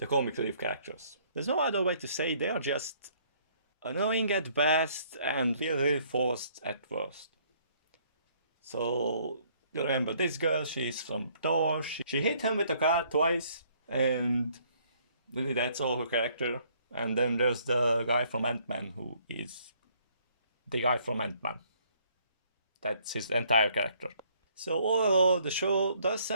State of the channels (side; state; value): both; inverted; correlation -0.63